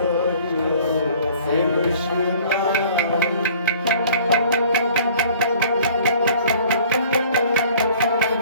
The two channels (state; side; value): inverted; both; correlation -0.52